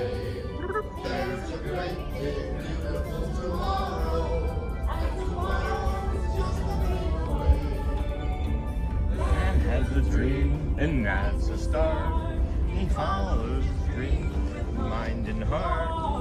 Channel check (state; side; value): identical; both; correlation 1.00